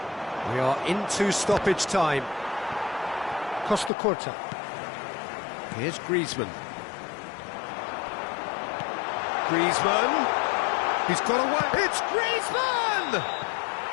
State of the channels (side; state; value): right; drops out; at 3.9 s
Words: We are into stoppage time. Costa Curta. Here's Griezmann. Griezmann. He's got away. It's Griezmann!